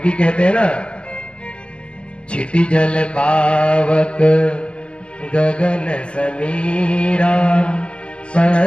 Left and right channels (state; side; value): late; right; 0.053 ms